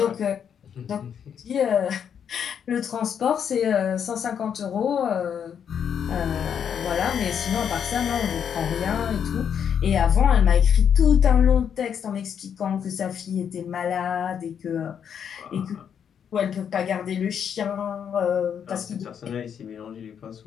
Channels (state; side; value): quieter; right; 8.0 dB